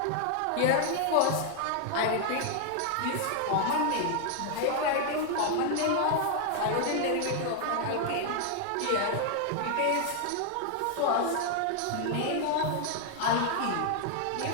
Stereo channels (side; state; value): both; different; correlation 0.00